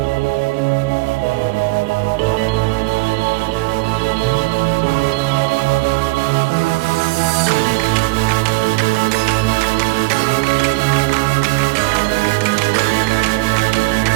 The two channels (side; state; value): left; quieter; 24.6 dB